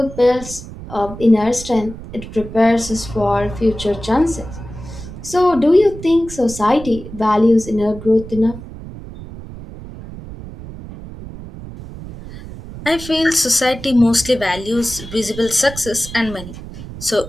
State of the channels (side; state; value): right; noise; rumble, 13 dB below the sound